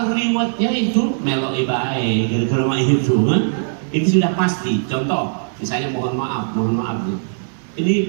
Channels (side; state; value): left; silent; digital silence